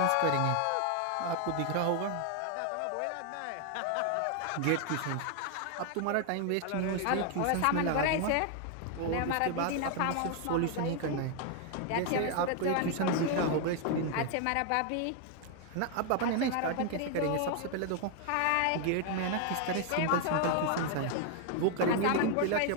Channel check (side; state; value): both; different; correlation 0.00